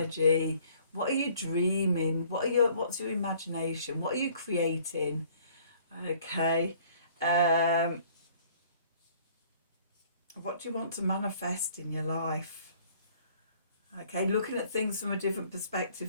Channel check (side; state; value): both; inverted; correlation -0.57